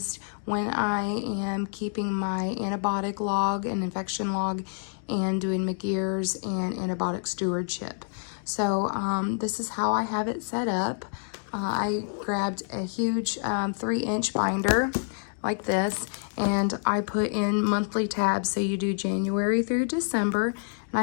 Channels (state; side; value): silent; right; 60 dB below the other